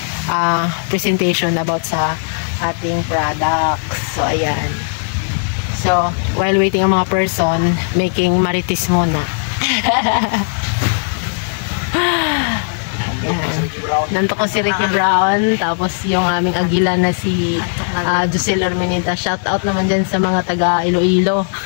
presentation about sa ating products. So ayan. So while waiting ang mga person, making marites muna. Nanto ko si Ricky Brown, tapos yung aming agila na si Josel Ormenita. Shout out naman dyan sa mga taga Iloilo.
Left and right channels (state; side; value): silent; right; digital silence